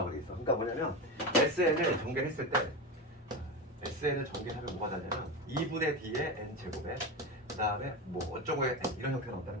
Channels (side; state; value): both; normal; correlation 0.20